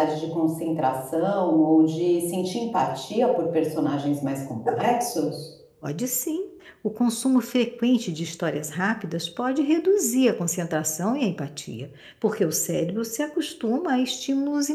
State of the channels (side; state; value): both; identical; correlation 1.00